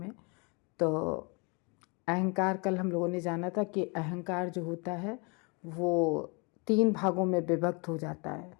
तो अहंकार, कल हम लोगों ने जाना था कि अहंकार जो होता है वो 3 भागों में विभक्त हो जाता है।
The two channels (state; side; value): quieter; right; 31.6 dB